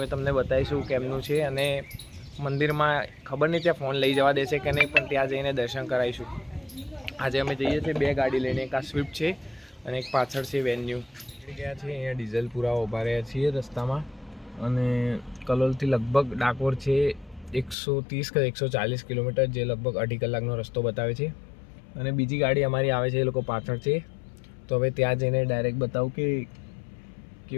તમને બતાવીશું કેમનું છે અને મંદિરમાં ખબર નહીં ત્યાં ફોન લઈ જવા દેશે કે નહીં, પણ ત્યાં જઈને દર્શન કરાવીશું. આજે અમે જઈએ છીએ બે ગાડી લઈને, એક આ સ્વિફ્ટ છે અને એક પાછળ છે વેન્યુ. ગયા છે અહીંયા ડીઝલ પૂરા ઊભા રહ્યા છીએ રસ્તામાં અને કલોલથી લગભગ ડાકોર છે 130 કે 140 કિલોમીટર, જે લગભગ 2.5 કલાકનો રસ્તો બતાવે છે. અને બીજી ગાડી અમારી આવે છે, એ લોકો પાછળ છે. તો હવે ત્યાં જઈને ડાયરેક્ટ બતાવું કે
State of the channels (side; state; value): right; drops out; at 17.8 s